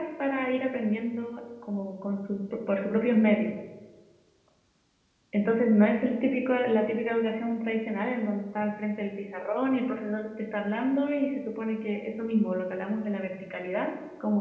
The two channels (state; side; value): identical; both; correlation 1.00